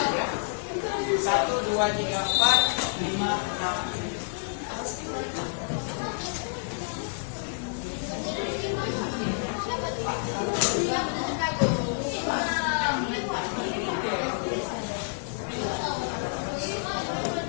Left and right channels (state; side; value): silent; right; digital silence